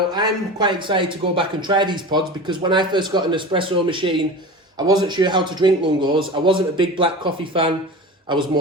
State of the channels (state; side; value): normal; both; correlation 0.32